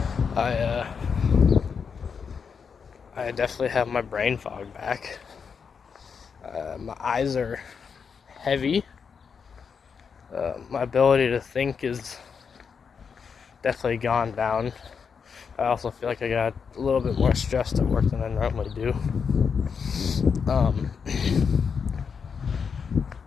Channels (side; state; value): right; quieter; 6.2 dB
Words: I definitely have my brain fog back. My eyes are heavy. My ability to think is definitely gone down. I also feel like I got a little bit more stressed at work than I normally do. The